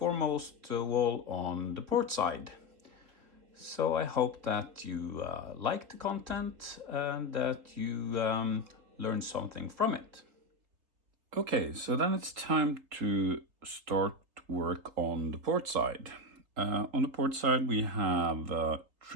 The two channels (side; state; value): left; late; 3.8 ms